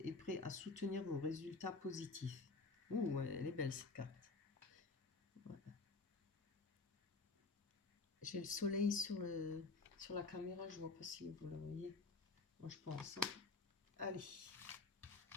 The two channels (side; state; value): right; quieter; 3.7 dB